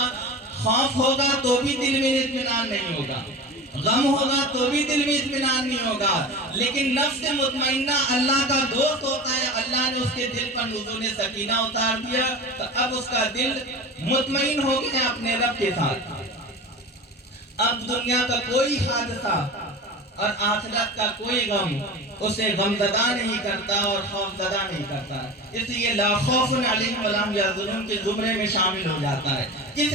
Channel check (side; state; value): both; normal; correlation 0.31